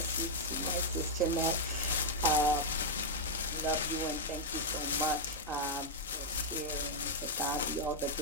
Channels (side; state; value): both; normal; correlation -0.03